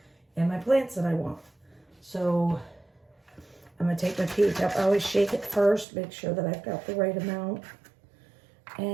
in my plants than I want. So I'm going to take my pH up. I always shake it first, make sure that I've got the right amount.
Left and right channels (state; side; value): drops out; left; at 5.9 s